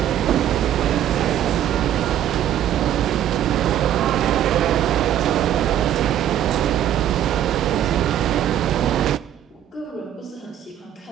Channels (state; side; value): quieter; left; 10.9 dB